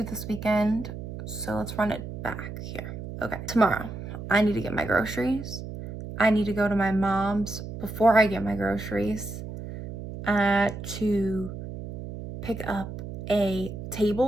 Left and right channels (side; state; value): right; noise; hum, 9 dB below the sound